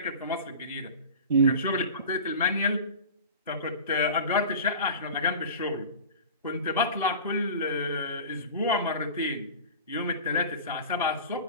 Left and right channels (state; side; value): inverted; both; correlation -0.35